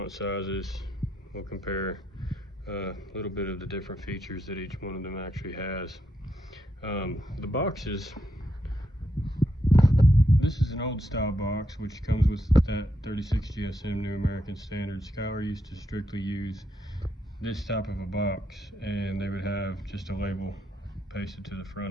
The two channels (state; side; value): normal; both; correlation 0.80